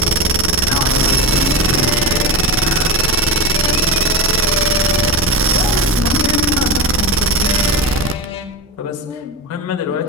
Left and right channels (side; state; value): both; normal; correlation 0.21